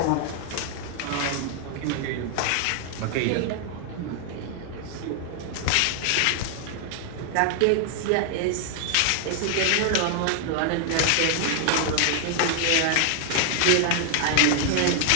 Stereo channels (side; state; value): both; different; correlation 0.00